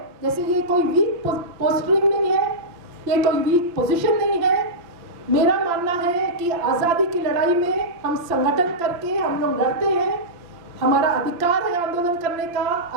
जैसे ये कोई वीक पोस्टरिंग नहीं है, ये कोई वीक पोजीशन नहीं है। मेरा मानना है कि आज़ादी की लड़ाई में हम संगठन करके हम लोग लड़ते हैं, हमारा अधिकार है आंदोलन करने का,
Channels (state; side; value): late; left; 5.8 ms